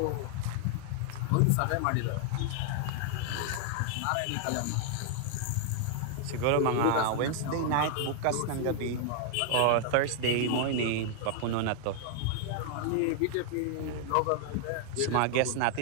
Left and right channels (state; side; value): different; both; correlation 0.00